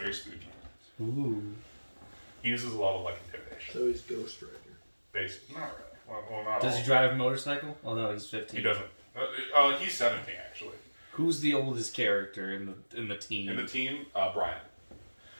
spooky. Ooh. He uses a lot of like intimidation. So he's Ghost Rider. Basically, not really. Well, not Does all. he drive a motorcycle? Oh no, he's 15. He doesn't. He's 17 actually. Who's the oldest character in the team? In the team, Brian.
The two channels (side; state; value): both; inverted; correlation -1.00